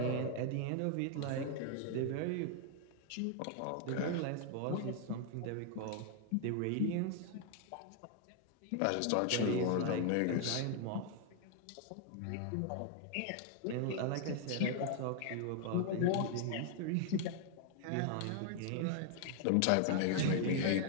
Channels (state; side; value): different; both; correlation 0.00